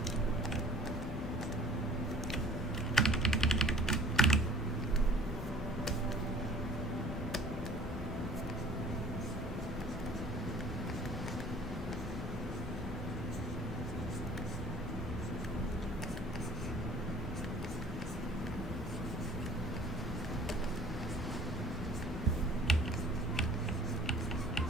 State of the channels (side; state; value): both; normal; correlation 0.51